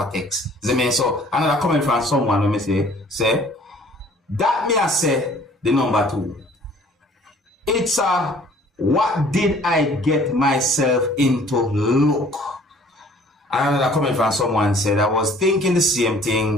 text. So another comment from someone when me say that me I say the number 2. It's a what did I get myself into look. Another comment from someone said I was thinking the same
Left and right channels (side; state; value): both; normal; correlation 0.54